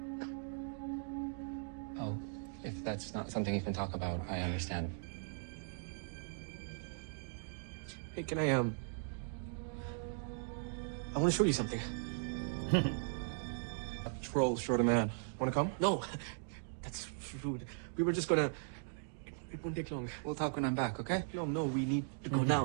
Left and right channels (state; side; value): silent; left; digital silence